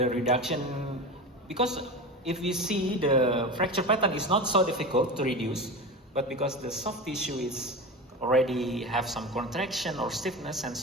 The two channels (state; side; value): normal; both; correlation 0.27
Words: reduction? Because if we see the fracture pattern is not so difficult to reduce, but because the soft tissue is already have some contraction or stiffness and